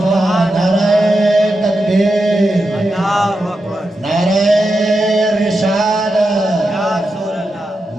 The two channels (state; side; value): normal; both; correlation 0.88